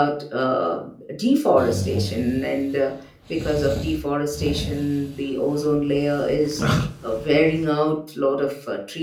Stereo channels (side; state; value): both; identical; correlation 1.00